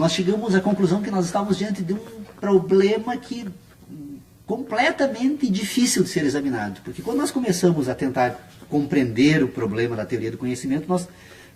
chegamos à conclusão que nós estávamos diante de um problema que completamente difícil de ser examinado, porque quando nós começamos a tentar compreender o problema da teoria do conhecimento, nós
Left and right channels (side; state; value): both; identical; correlation 1.00